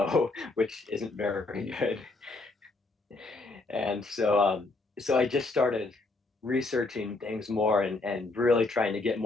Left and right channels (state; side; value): quieter; right; 3.3 dB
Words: which isn't very good. And so I just started researching things more, and really trying to get